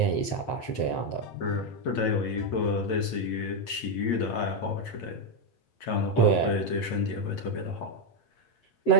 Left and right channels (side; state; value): right; late; 8.6 ms